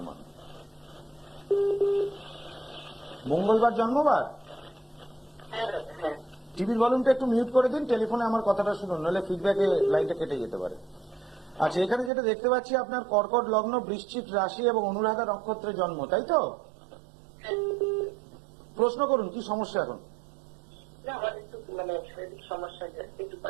মঙ্গলবার জন্মবার? হ্যাঁ দাদা, হ্যাঁ। টিভির ভলিউমটা একটু মিউট করে দিন, টেলিফোনে আমার কথাটা শুনুন, নাহলে ফিডব্যাকে লাইনটা কেটে যেতে পারে। আচ্ছা, এখানে যেটা দেখতে পাচ্ছি আপনার কর্কট লগ্ন, বৃশ্চিক রাশি এবং অনুরাধা নক্ষত্রে জন্ম, তাই তো? প্রশ্ন করুন, কি সমস্যা এখন? না, আমার একটু শারীরিক সমস্যা যাচ্ছে, একটু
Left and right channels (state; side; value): drops out; left; at 12.1 s